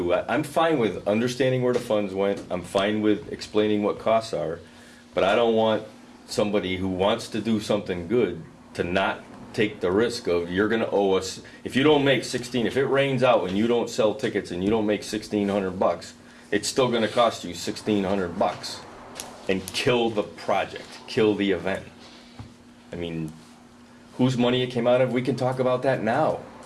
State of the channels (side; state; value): both; identical; correlation 1.00